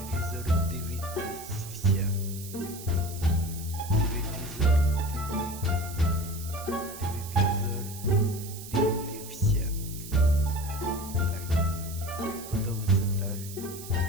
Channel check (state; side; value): noise; right; hiss, 13 dB below the sound